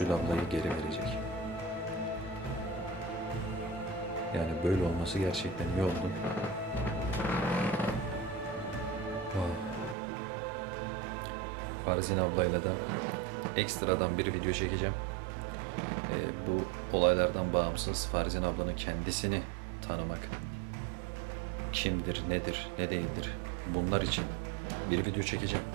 ablayı geri verecek. Yani böyle olması gerçekten iyi oldu. Farzin ablayla da ekstradan bir video çekeceğim. Bu olaylardan bağımsız Farzin ablanın kendisini tanımak, kimdir, nedir, ne değildir, bunlar için bir video çekeceğim.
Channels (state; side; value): drops out; left; at 10.0 s